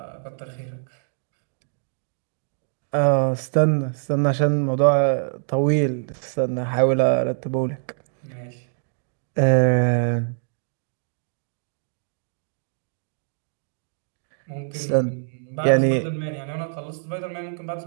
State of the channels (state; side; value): silent; left; digital silence